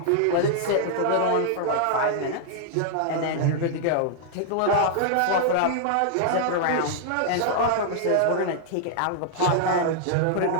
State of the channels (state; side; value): different; both; correlation -0.01